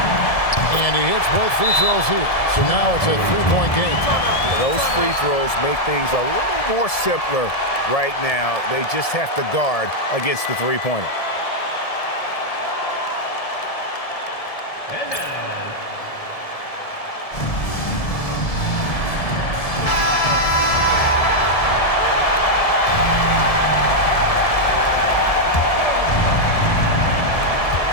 And he hits both free throws here. So now it's a 3-point game. Those free throws make things a little more simpler right now. They just have to guard against the three-pointer. And now,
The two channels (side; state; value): right; late; 1.7 ms